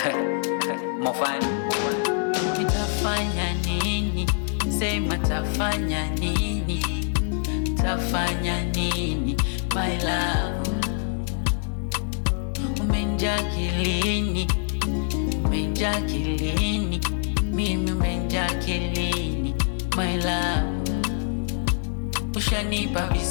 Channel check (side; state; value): right; silent; 62 dB below the other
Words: Mofani. Nitafanya nini? Sema tafanya nini? Tafanya nini? My love, umenjaa kilini, umenjaa kilini, mimi umenjaa kilini. My love, ushanipa